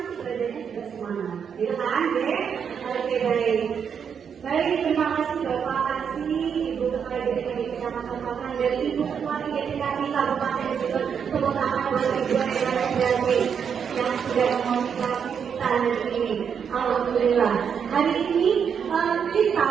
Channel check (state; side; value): quieter; left; 7.2 dB